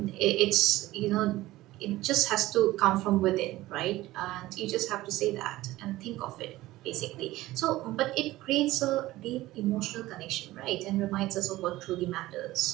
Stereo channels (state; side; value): quieter; left; 17.1 dB